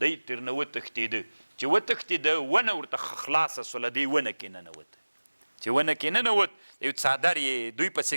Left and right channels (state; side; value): inverted; both; correlation -1.00